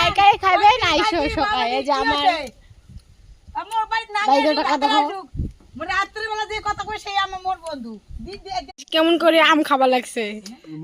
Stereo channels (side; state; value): both; identical; correlation 1.00